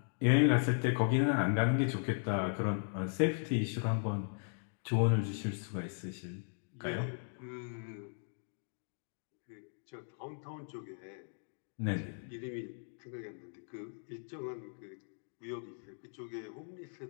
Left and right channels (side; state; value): right; silent; digital silence